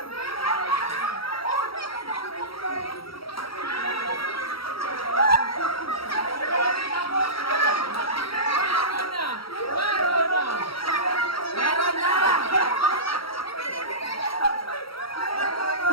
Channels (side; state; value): right; late; 0.75 ms